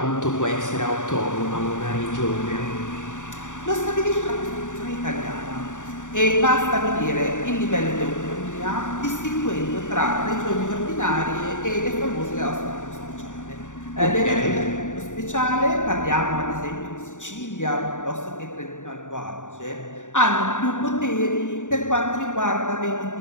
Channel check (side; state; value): right; late; 0.86 ms